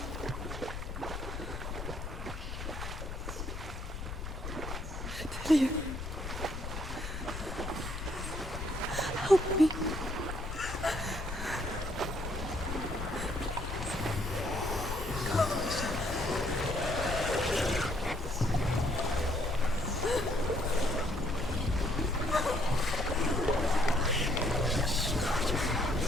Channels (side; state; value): left; noise; rumble, 6 dB below the sound